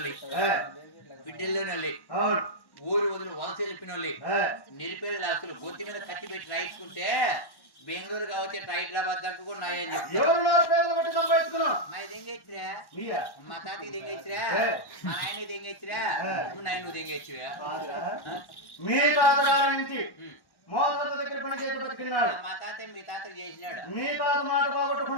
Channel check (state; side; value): late; right; 1.1 ms